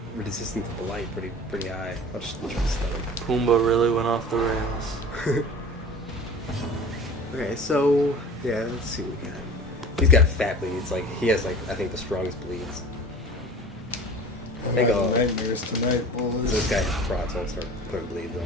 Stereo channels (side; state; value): both; normal; correlation 0.40